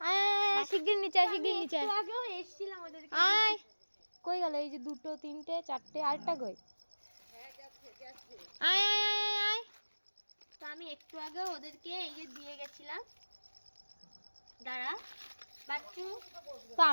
আয় আয়, শিগগির নিচে আয়, শিগগির নিচে আয়। একটু আগেও এসেছিলাম ওদেরকে। আয়, কই গেল? এই যে দুটো, তিনটে, চারটে, আরেকটা কই? আয় আয় আয় আয় আয়। তো আমি একটু আগেও ওদেরকে এই যে দিয়ে গেছিলাম। দাঁড়া বাচ্চু। তো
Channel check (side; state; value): both; inverted; correlation -1.00